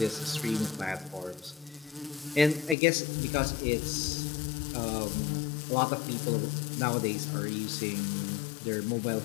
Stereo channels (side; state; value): right; drops out; at 2.8 s